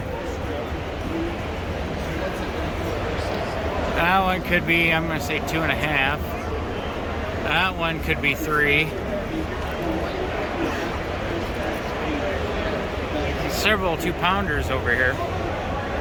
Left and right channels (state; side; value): identical; both; correlation 1.00